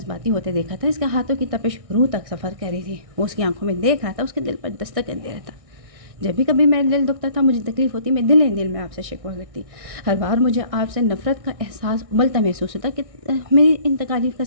ہوتے دیکھا تھا. اس کے ہاتھوں کی تپش روح تک سفر کر رہی تھی. وہ اس کی آنکھوں میں دیکھ رہا تھا, اس کے دل پر دستک دے رہا تھا. جب بھی کبھی میرا دل دکھتا تھا, مجھے تکلیف ہوتی, میں دل میں آپ سے شکوہ کرتی. ہر بار مجھے آپ سے نفرت کا احساس ابلتا محسوس ہوتا کہ میری ان تکالیف کا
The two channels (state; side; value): late; left; 1.6 ms